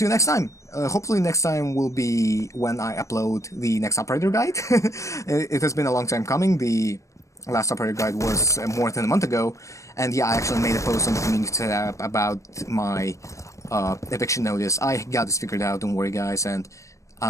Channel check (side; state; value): right; late; 0.15 ms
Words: you next time. Hopefully next time will be when I upload the next operator guide. It has been a long time coming. The last operator guide was more than a month ago, and yeah, I actually made a post on the community tab about my eviction notice. I got this figured out, don't worry guys, and